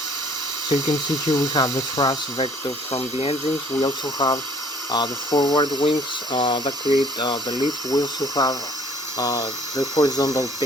you can see here we have the thrust vector from the engines. We also have the forward wings that create the lift. We also have the horizontal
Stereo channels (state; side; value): normal; both; correlation 0.57